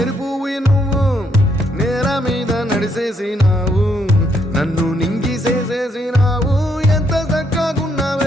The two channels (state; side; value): normal; both; correlation 0.74